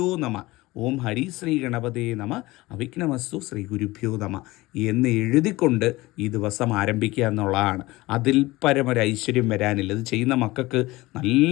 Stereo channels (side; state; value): right; quieter; 19.9 dB